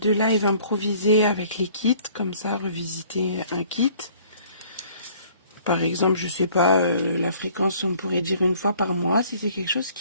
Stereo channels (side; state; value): both; inverted; correlation -0.56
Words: de live improvisé avec les kits, comme ça, revisiter un kit. Par exemple, je sais pas, la fréquence, on pourrait dire 1 fois par mois, si c'est quelque chose